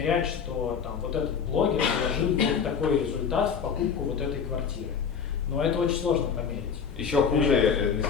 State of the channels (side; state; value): right; quieter; 6.7 dB